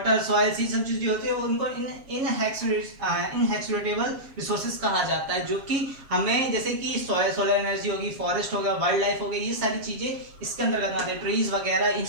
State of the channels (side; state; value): left; late; 7.4 ms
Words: सॉइल्स, ये सब चीजें होती है उनको इनहेरिटेबल रिसोर्सेज कहा जाता है, जो कि हमें, जैसे कि सोलर एनर्जी होगी, फॉरेस्ट हो गया, वाइल्ड लाइफ हो गई, ये सारी चीजें इसके अंतर्गत आते हैं। ट्रीज वगैरह, इन